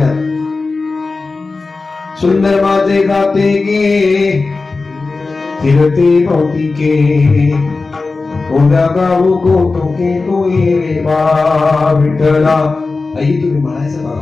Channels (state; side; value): quieter; right; 3.8 dB